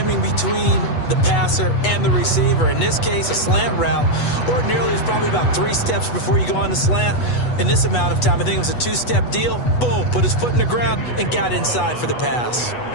between the passer and the receiver. In this case, a slant route ordinarily is probably about 3 steps before you go on the slant. In this amount of time, I think it was a 2-step deal. Boom, put his foot in the ground and got inside for the pass.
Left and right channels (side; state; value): right; late; 8.2 ms